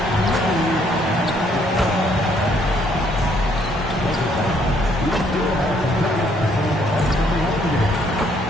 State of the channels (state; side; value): normal; both; correlation 0.67